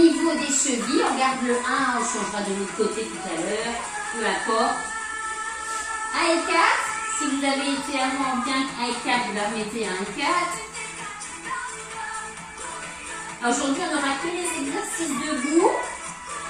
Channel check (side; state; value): both; identical; correlation 1.00